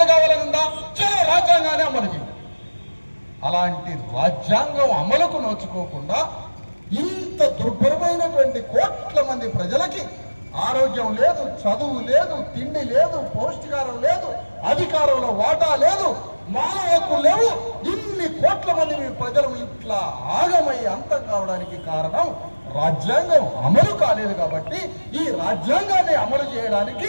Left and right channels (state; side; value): inverted; both; correlation -1.00